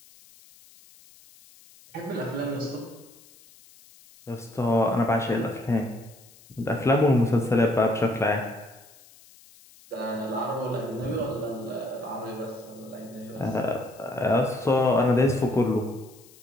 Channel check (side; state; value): left; noise; hiss, 25 dB below the sound